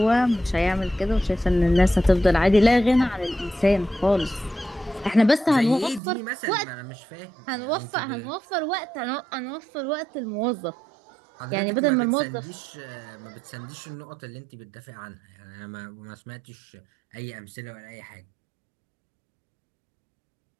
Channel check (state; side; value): drops out; left; at 6.0 s